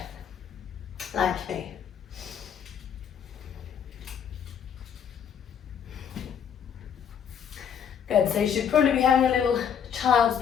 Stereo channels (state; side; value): quieter; right; 7.9 dB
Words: like me. Good, so you should probably be having a little child's